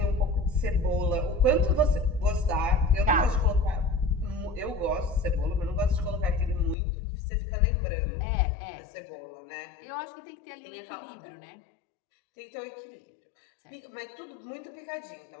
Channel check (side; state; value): right; drops out; at 6.8 s